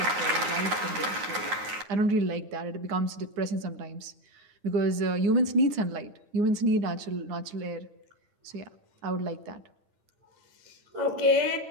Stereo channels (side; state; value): left; late; 9.5 ms